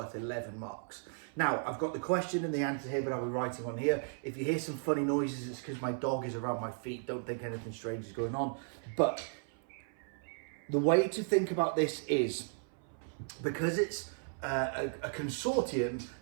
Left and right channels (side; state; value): left; silent; 54 dB below the other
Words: 11 marks. Now, I've got the question and the answer here, but I'll be writing on here. If you hear some funny noises, it's because my dog is around my feet. Don't think anything strange is going on. But the way to think about this is, because it's a consortium,